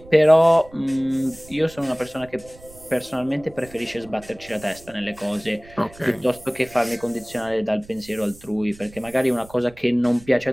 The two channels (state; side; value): noise; right; rumble, 22 dB below the sound